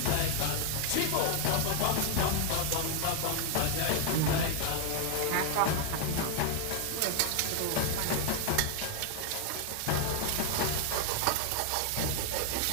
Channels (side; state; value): both; different; correlation 0.00